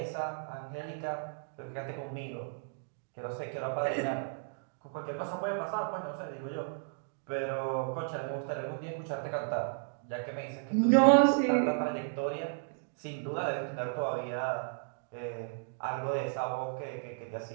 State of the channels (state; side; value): silent; left; digital silence